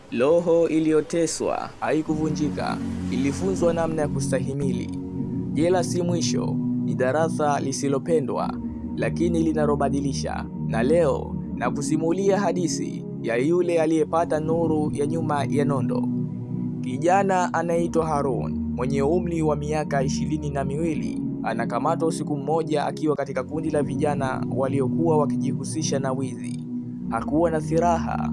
Roho iliyoteswa haikuvunjika, ilifunzwa namna ya kustahimili. Jela si mwisho, ni darasa lisilopendwa, lakini linalobadilisha. Na leo na kusimulia hadithi ya yule aliyepata nuru ya nyuma ya nondo. Kijana anaitwa Harun, mwenye umri wa miaka 22, anakamatwa usiku mmoja akiwa katika kundi la vijana waliokuwa wakijihusisha na wizi. Hakuwa na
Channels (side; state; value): both; identical; correlation 1.00